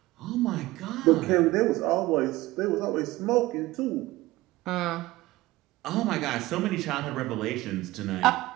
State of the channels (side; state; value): left; quieter; 18.5 dB